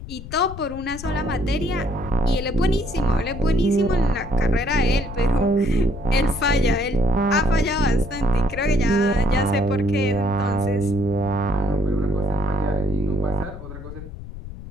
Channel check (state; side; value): noise; left; rumble, 12 dB below the sound